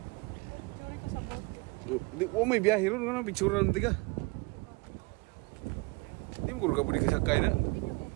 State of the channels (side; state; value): left; quieter; 26.6 dB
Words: Oh may biyahe ron nga picture ron tiga. Di mo ko kabudi kasakay na.